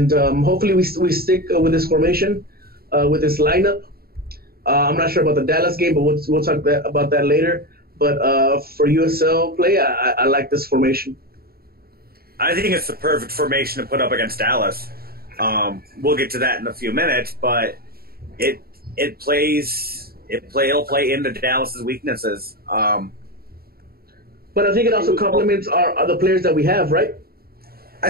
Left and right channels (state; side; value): late; left; 0.44 ms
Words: we stick with this formation, with this lineup. I'm not sure about the Dallas game, but we'll talk about that later. But for USL play, I like this formation. I think it's the perfect formation to put up against Dallas. We'll get to that in a few minutes, but it'll play into Dallas's weaknesses. But I think it also complements our other players that we have, right?